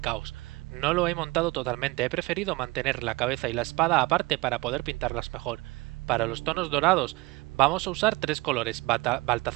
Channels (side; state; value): left; quieter; 22.8 dB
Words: caos. No lo he montado totalmente, he preferido mantener la cabeza y la espada aparte para poder pintarlas mejor. Para los tonos dorados vamos a usar tres colores,